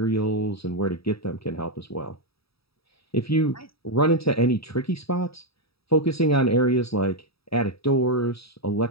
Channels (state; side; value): late; right; 0.77 ms